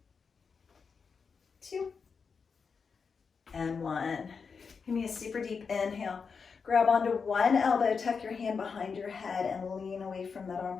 2, and 1. Give me a super deep inhale. Grab onto one elbow, tuck your hand behind your head and lean away from that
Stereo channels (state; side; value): quieter; right; 5.6 dB